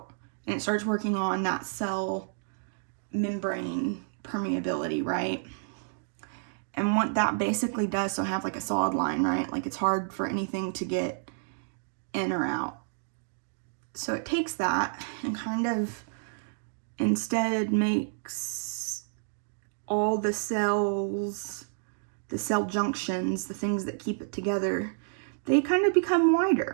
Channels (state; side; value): silent; left; digital silence